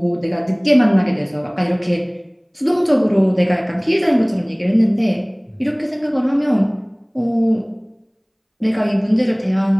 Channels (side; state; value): both; identical; correlation 1.00